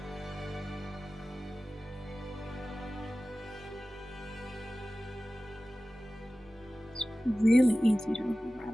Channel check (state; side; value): normal; both; correlation 0.96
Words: really easy to